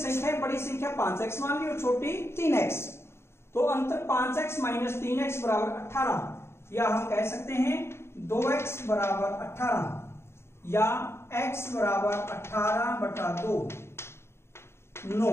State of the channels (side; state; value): right; late; 0.12 ms